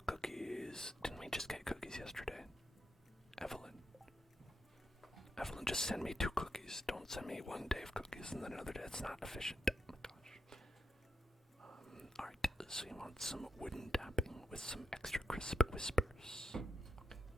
cookies. Didn't we just get send me one day of cookies and then another day it's not efficient. Oh my gosh. Alright, so you want some wooden tapping with some extra crisp whispers. Okay.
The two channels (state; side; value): normal; both; correlation 0.83